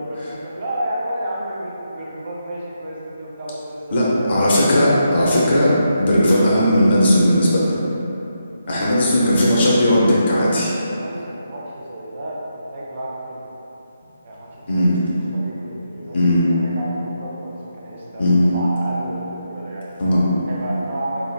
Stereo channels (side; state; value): both; inverted; correlation -0.82